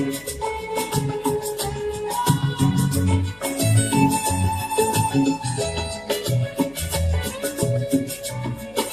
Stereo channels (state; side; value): noise; left; hum, 26 dB below the sound